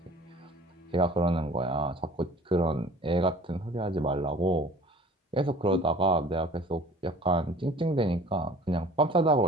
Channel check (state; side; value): normal; both; correlation 0.47